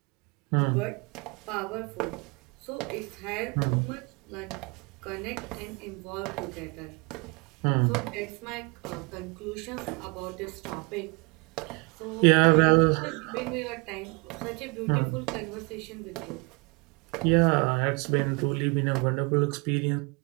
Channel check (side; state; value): left; quieter; 30.0 dB